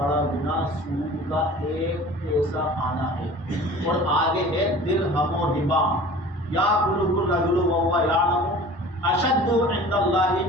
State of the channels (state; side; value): normal; both; correlation 0.42